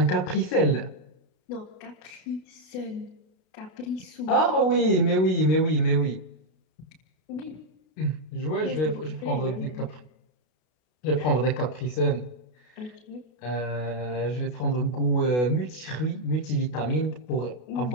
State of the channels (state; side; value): late; right; 32 ms